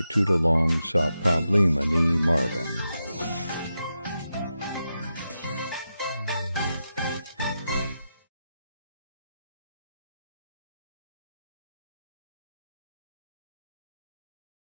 tutulong sa problema ni Marvin.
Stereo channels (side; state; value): both; inverted; correlation -0.88